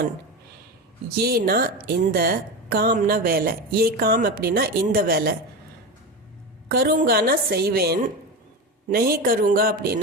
ஏனா இந்த, காம்னா வேலை, ஏ காம் அப்படின்னா இந்த வேலை, கருங்கானா செய்வேன், நெஹி கருங்கா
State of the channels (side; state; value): both; normal; correlation 0.21